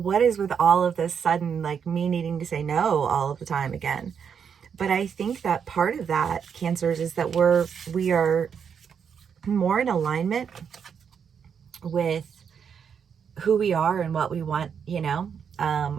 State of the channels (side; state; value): left; quieter; 7.2 dB